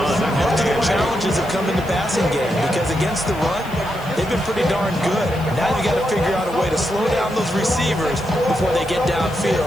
Their challenges have come in the passing game because against the run, they've been pretty darn good. Now you got to figure out a way to slow down those receivers before they get downfield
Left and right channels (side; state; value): left; noise; hiss, 21 dB below the sound